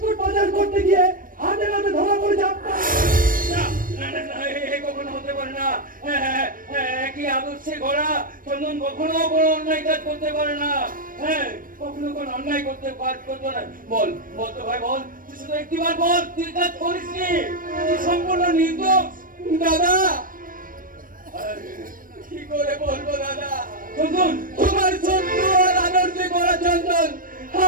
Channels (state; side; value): late; left; 0.40 ms